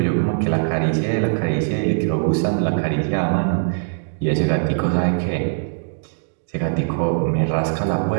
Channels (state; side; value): silent; left; digital silence